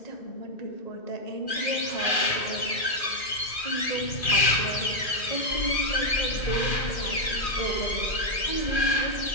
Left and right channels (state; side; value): late; right; 2.4 ms